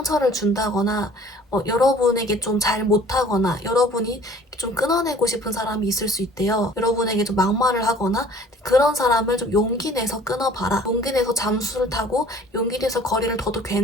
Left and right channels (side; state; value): both; normal; correlation 0.51